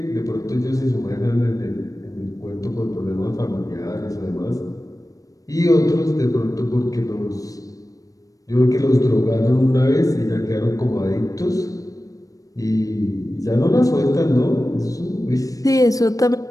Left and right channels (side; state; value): right; late; 0.17 ms